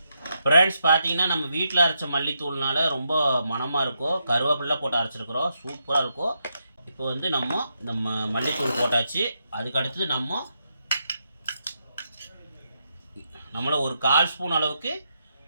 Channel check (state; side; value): inverted; both; correlation -0.82